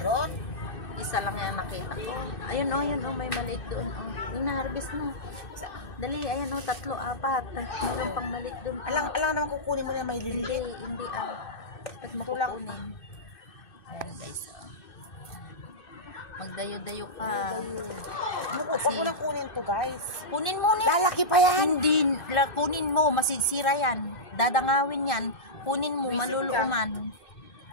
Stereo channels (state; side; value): late; right; 2.6 ms